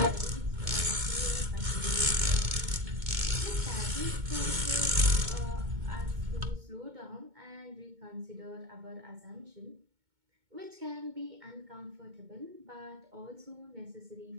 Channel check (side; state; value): left; late; 2.2 ms